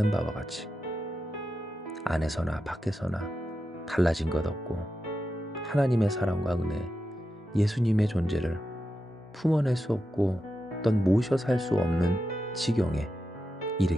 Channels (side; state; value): both; normal; correlation 0.89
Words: 바와 같이 안에서나 밖에서나 달라진 것 없고 하나님의 사랑과 은혜, 예수님의 존재를 품어낼 수 없고 어떤 모셔 살 수 없는 지경에